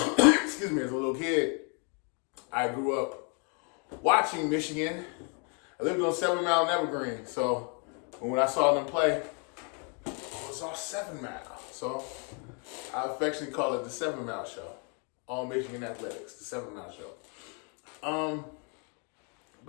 me, as a little kid, I grew up watching Michigan. I lived on 7 Mile and Evergreen. So when I saw them play, it was all 7 Mile. So I affectionately call it the 7 Mile Show. All Michigan Athletics, the 7 Mile Show.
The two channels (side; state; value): right; quieter; 37.8 dB